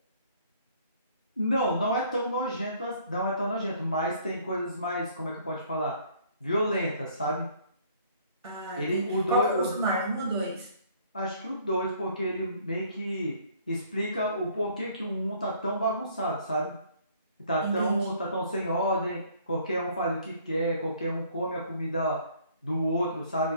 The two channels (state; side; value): inverted; both; correlation -0.59